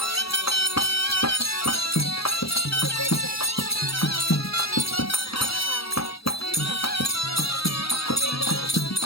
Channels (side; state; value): right; late; 0.76 ms